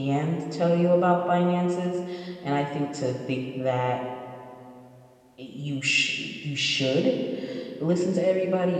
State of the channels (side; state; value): both; identical; correlation 1.00